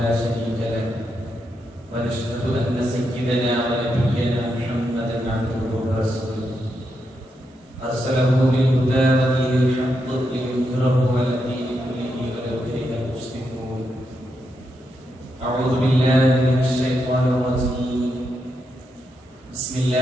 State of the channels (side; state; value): both; normal; correlation 0.83